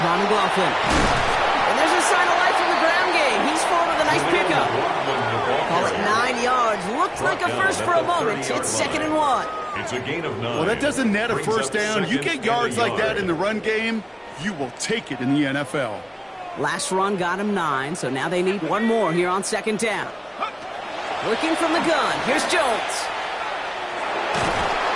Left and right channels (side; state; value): both; identical; correlation 1.00